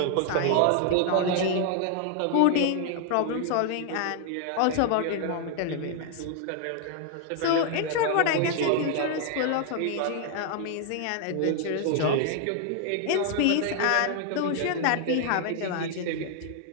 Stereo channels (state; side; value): different; both; correlation 0.00